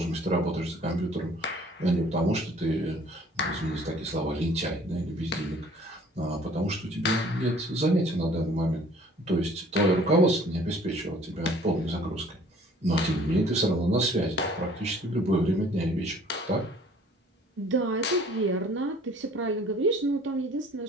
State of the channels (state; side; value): normal; both; correlation 0.54